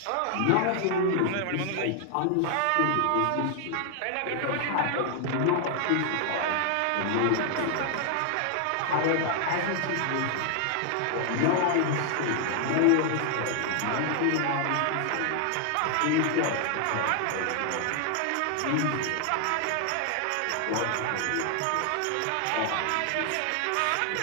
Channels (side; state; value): both; different; correlation 0.00